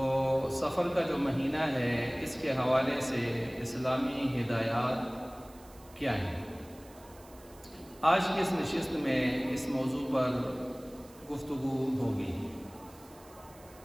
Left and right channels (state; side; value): noise; right; hiss, 24 dB below the sound